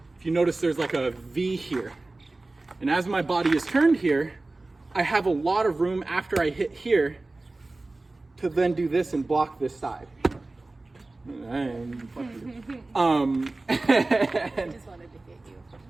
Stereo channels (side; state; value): left; quieter; 3.1 dB